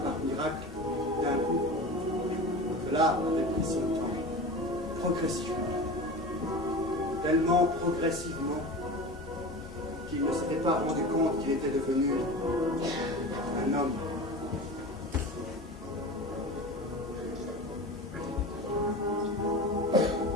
miracle d'un coup. Cela avait pris son temps, progressivement. Tellement progressivement qu'il ne s'était pas rendu compte qu'il était devenu un homme.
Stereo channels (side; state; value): both; normal; correlation 0.31